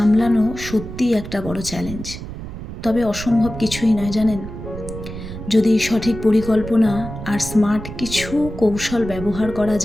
সত্যিই একটা বড় চ্যালেঞ্জ, তবে অসম্ভব কিছুই নয় জানেন। যদি সঠিক পরিকল্পনা আর স্মার্ট কিছু কৌশল ব্যবহার করা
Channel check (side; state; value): right; noise; rumble, 10 dB below the sound